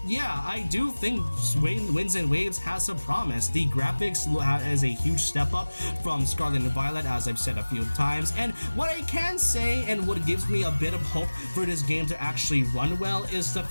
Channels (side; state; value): both; inverted; correlation -1.00